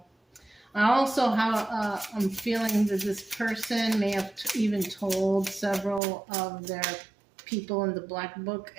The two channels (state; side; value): drops out; left; at 6.0 s